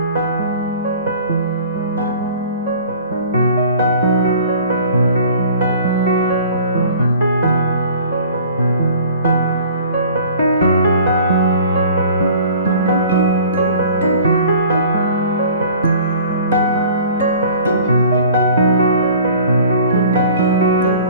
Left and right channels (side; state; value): both; inverted; correlation -0.47